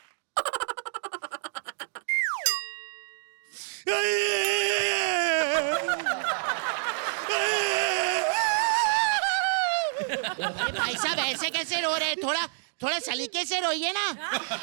अरे भाई साहब ऐसे कैसे रो रहे हैं? थोड़ा थोड़ा सलीके से रोइए ना।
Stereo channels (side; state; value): left; silent; digital silence